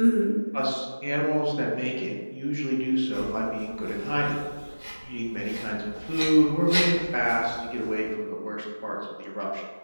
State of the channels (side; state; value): both; inverted; correlation -1.00